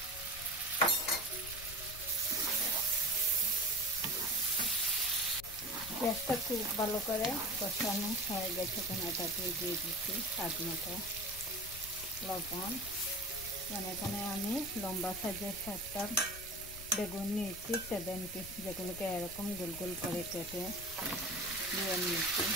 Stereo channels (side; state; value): left; noise; rumble, 14 dB below the sound